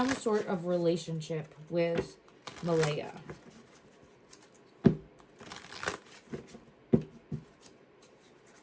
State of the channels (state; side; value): identical; both; correlation 1.00